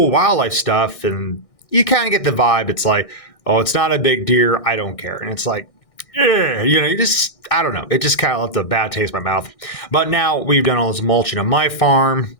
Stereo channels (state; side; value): late; right; 1.6 ms